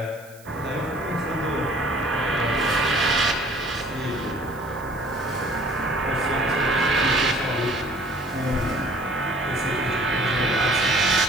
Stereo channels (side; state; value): right; noise; hiss, 24 dB below the sound